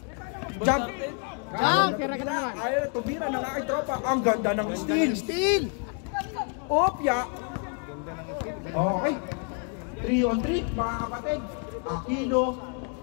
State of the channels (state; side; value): quieter; right; 39.5 dB